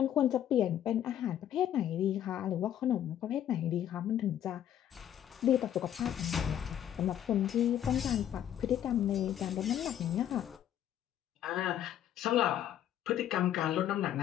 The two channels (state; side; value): quieter; right; 10.8 dB